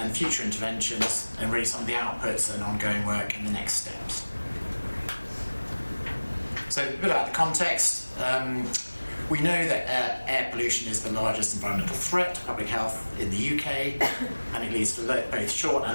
future interventions, and really some of the outputs and ongoing work and the next steps. So a bit about the context. We know that air pollution is the largest environmental threat to public health in the UK, and it leads to both short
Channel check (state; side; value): inverted; both; correlation -1.00